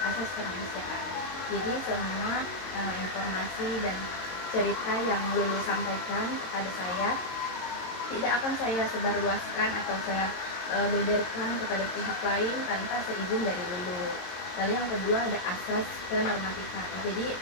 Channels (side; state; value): right; late; 22 ms